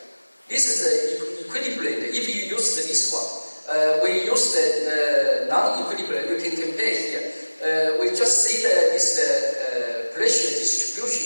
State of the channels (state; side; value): inverted; both; correlation -1.00